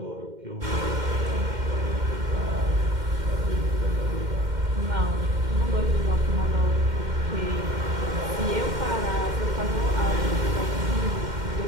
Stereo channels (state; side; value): late; left; 2.1 ms